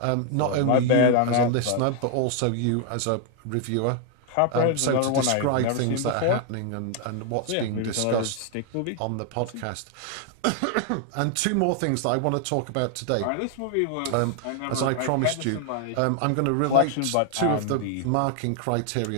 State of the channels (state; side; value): different; both; correlation 0.00